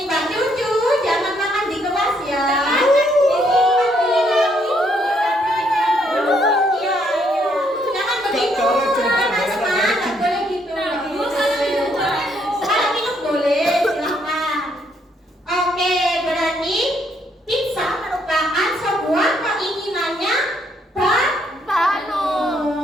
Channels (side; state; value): both; normal; correlation 0.71